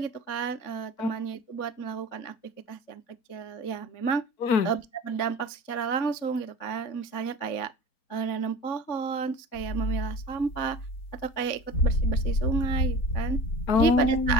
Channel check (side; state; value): right; late; 3.6 ms